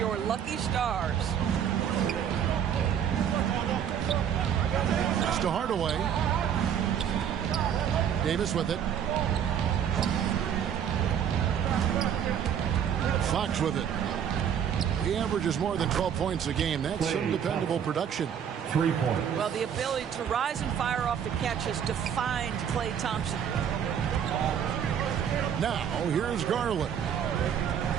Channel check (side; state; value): left; quieter; 8.7 dB